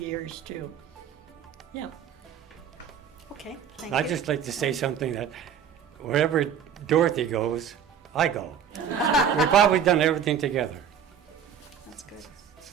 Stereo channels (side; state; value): left; quieter; 8.0 dB